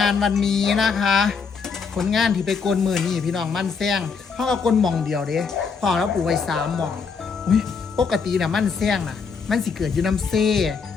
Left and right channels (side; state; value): right; quieter; 5.5 dB